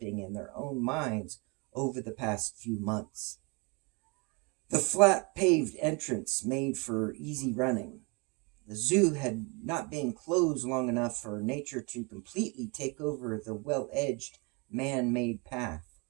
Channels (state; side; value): quieter; left; 30.3 dB